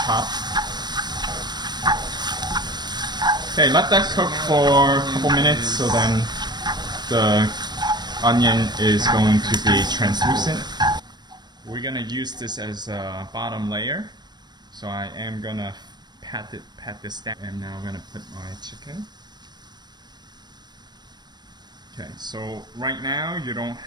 chopped. Okay, let that cook for a couple minutes so then the onion is going to be translucent. We're gonna use this as a bottom layer. So I am gonna pat this down, and now I'm gonna put my chicken. Okay, so right now you don't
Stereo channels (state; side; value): late; left; 0.21 ms